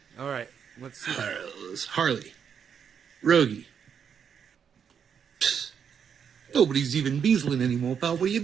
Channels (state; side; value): quieter; left; 7.4 dB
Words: Alright, let's see. Harley. Rogie. Psst. Nobody's even beezling anymore, pal. What are you